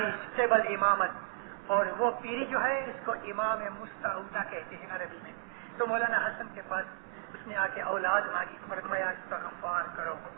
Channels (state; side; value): silent; left; 55 dB below the other